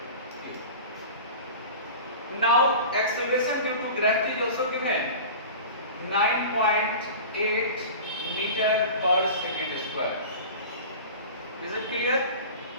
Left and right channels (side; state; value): both; inverted; correlation -0.35